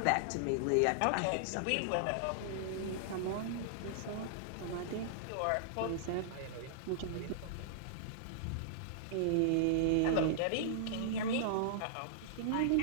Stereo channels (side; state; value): both; different; correlation -0.01